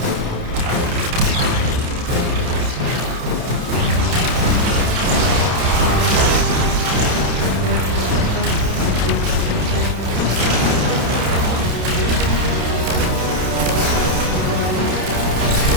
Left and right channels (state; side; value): late; left; 29 ms